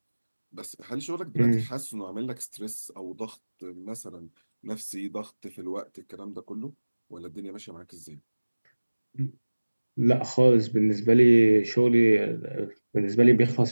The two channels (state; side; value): inverted; both; correlation -1.00